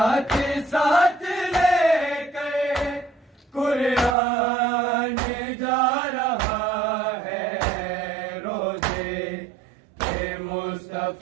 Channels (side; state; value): left; drops out; at 4.2 s